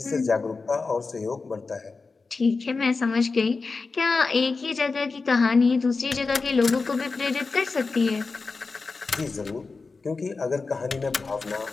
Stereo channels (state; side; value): quieter; right; 4.2 dB